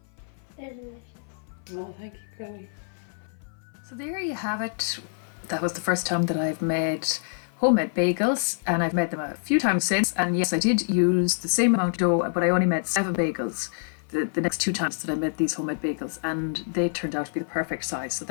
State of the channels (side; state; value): right; silent; 56 dB below the other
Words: They're delicious. Well, thank you, Chloe. So there you have it. That was the first time that I've made homemade bagels, and I've made them a few times since. And yes, I did use the same amount of dough, but I only made 7 bagels the next 2 times that I made these homemade bagels, and they turned out to be the perfect size. So